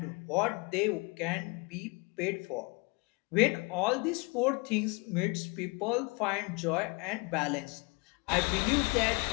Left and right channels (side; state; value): right; quieter; 29.2 dB